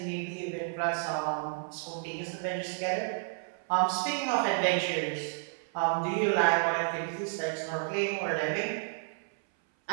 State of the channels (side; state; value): left; silent; 57 dB below the other